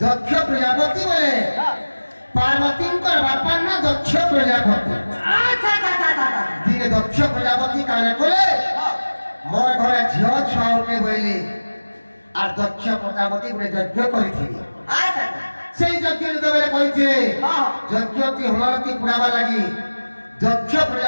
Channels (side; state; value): both; inverted; correlation -1.00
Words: दक्ष प्रजापति बोले पार्वती बापा ना दक्ष प्रजापति दिने दक्ष प्रजापति काने कोले मोर घरे झियो छाउके बोली আর দক্ষ প্রজাপতি বলে যজ্ঞ করিছিলি সেই যজ্ঞ যেতবেলে করিছিলে যজ্ঞটি হমারতি পুরাবা লাগি দক্ষ